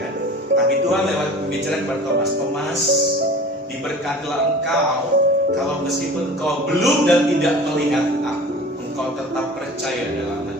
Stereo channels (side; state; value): both; normal; correlation 0.40